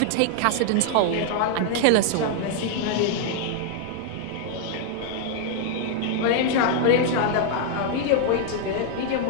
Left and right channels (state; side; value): different; both; correlation 0.00